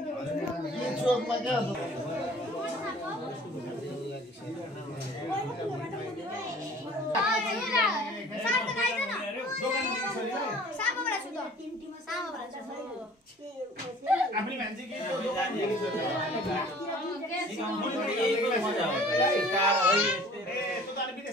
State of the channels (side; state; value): both; normal; correlation 0.49